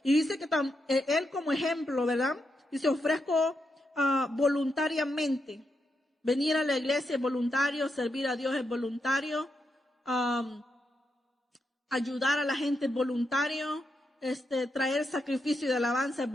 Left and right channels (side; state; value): both; normal; correlation 0.84